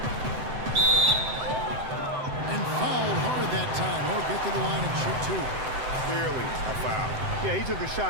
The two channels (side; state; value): left; late; 7.8 ms